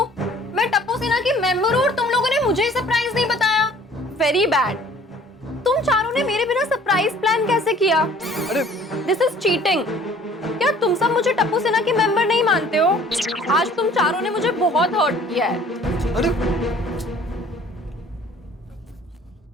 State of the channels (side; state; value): both; normal; correlation 0.53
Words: मैं टप्पू सेना की मेंबर हूँ और तुम लोगों ने मुझे सरप्राइज नहीं बताया। Very bad. तुम चारों ने मेरे बिना सरप्राइज प्लान कैसे किया? अरे दिस इज चीटिंग। क्या तुम सब मुझे टप्पू सेना की मेंबर नहीं मानते हो? आज तुम चारों ने मुझे बहुत हर्ट किया है। अरे